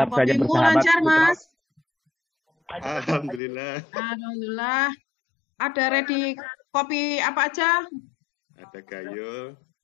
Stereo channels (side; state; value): right; drops out; at 3.4 s